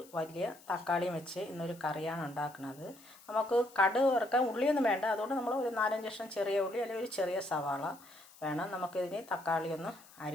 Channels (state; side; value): noise; left; hiss, 23 dB below the sound